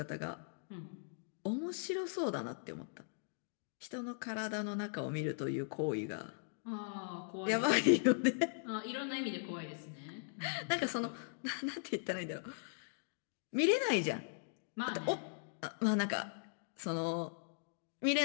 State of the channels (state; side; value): silent; right; digital silence